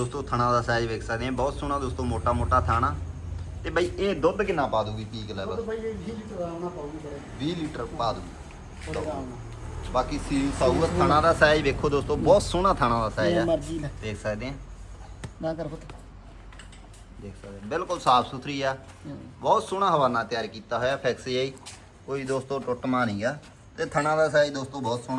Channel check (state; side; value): identical; both; correlation 1.00